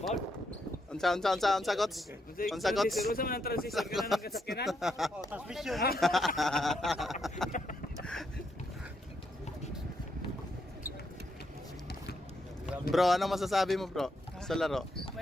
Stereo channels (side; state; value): both; normal; correlation 0.78